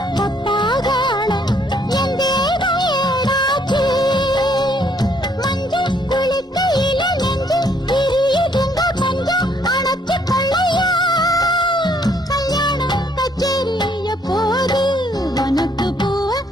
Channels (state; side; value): normal; both; correlation 0.67